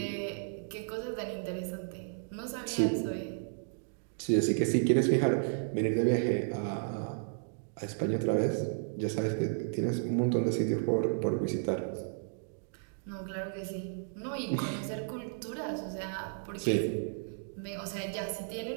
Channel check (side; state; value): left; silent; digital silence